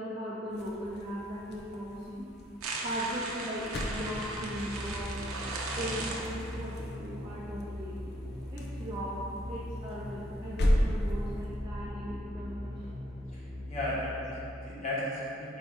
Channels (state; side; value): normal; both; correlation 0.67